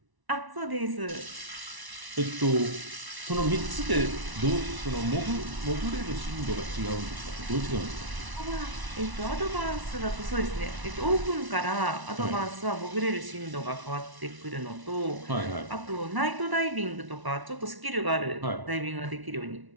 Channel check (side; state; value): left; late; 1.0 ms